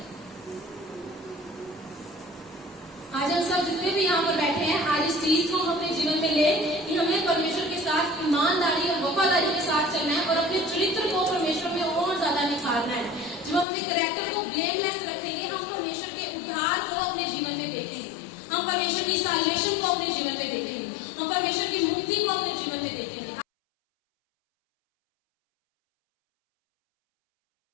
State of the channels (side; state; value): right; drops out; at 13.7 s